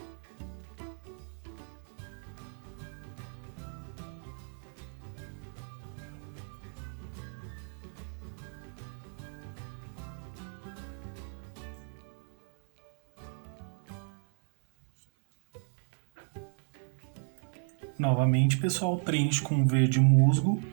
Novamente, pessoal, preencho com verde musgo,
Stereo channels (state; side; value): silent; left; 55 dB below the other